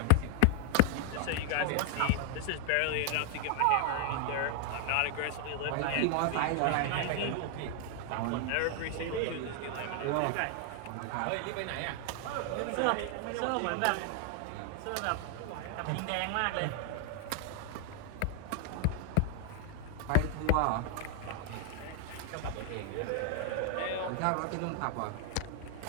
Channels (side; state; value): both; different; correlation 0.00